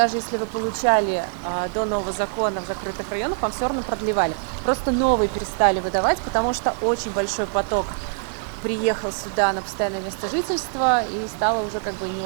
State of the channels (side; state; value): left; silent; digital silence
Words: если вы получали до нового закона в закрытых районах, вам все равно продлевали. Просто новые перестали выдавать, потому что очень большой поток приехал сюда на постоянное место жительства и стало уже как бы не